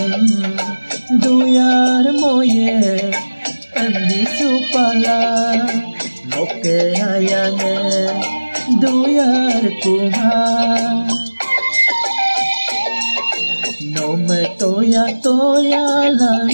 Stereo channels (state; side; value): inverted; both; correlation -1.00